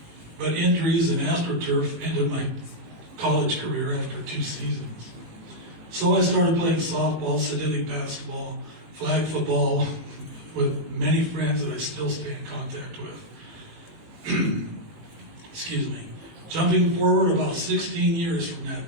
but injuries and AstroTurf ended my college career after 2 seasons. So I started playing softball, synthetic basketball, flag football with many friends that I still stay in contact with. Excuse me. Jumping forward about 16 years from that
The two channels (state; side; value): late; left; 18 ms